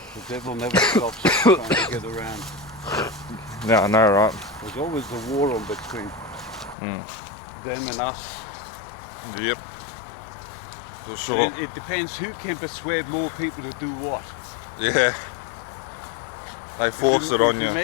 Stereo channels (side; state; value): right; drops out; at 6.8 s